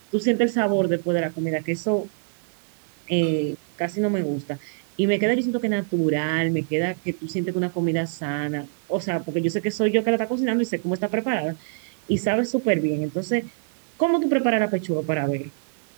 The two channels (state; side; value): silent; left; digital silence